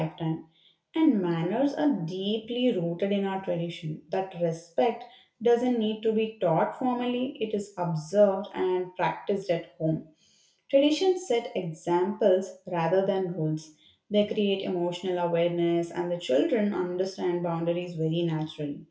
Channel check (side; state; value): both; identical; correlation 1.00